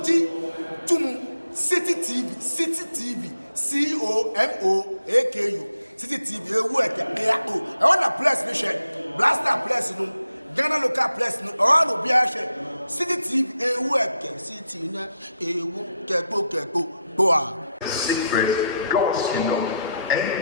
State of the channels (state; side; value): inverted; both; correlation -0.82